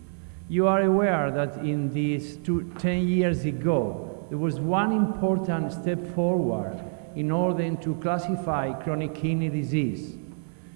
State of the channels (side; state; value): left; silent; 60 dB below the other